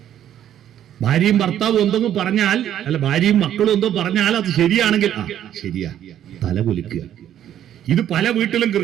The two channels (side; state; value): left; quieter; 10.9 dB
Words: ഭാര്യയും ഭർത്താവും എന്തെങ്കിലും പറഞ്ഞാൽ, അല്ല ഭാര്യയും മക്കളും എന്തോ പറഞ്ഞാൽ അത് ശരിയാണെങ്കിൽ ശരിയാ, തലകുലുക്കുക. ഇത് പല വീട്ടിലും